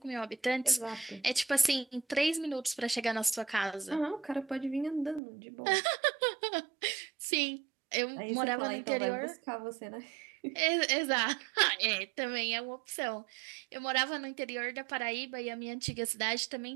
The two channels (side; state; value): left; drops out; at 5.2 s